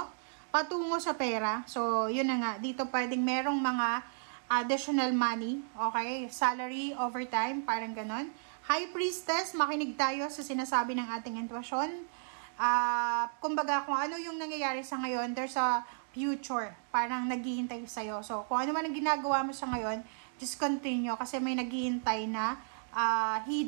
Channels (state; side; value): silent; left; digital silence